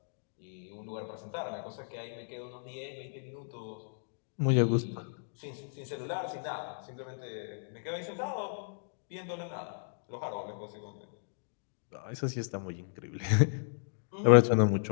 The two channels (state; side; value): silent; right; digital silence